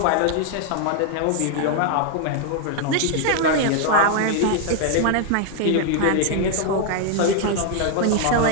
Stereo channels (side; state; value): both; different; correlation 0.00